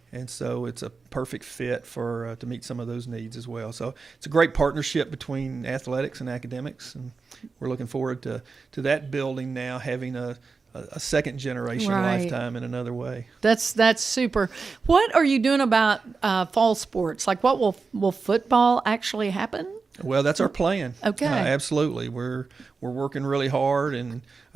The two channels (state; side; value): quieter; left; 4.6 dB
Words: and so it's a perfect fit to meet some of those needs as well. So it's a great partnership between athletics and academics, and we're looking forward to that building now having a a second generation Right. lifetime in another way. That's super. What are you doing about fall sports? Like, what will football actually happen? Well, that's our plan. Okay. Absolutely. We're working really hard, and